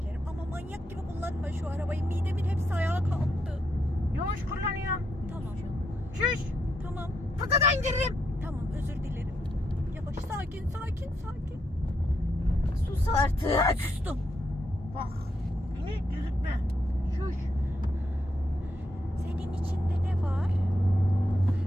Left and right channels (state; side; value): normal; both; correlation 0.80